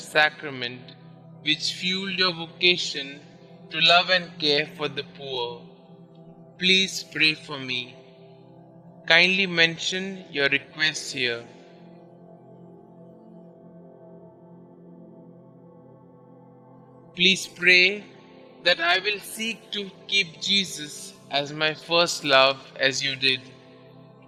which fueled your vocation to love and care for the poor. Please pray for me. Kindly mention your requests here. Please pray that I will seek to keep Jesus as my first love as you did.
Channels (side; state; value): both; identical; correlation 1.00